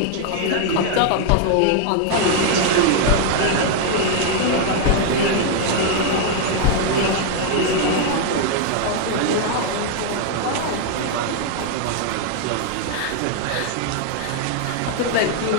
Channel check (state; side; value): different; both; correlation 0.00